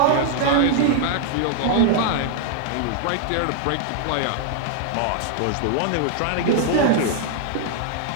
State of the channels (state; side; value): different; both; correlation 0.00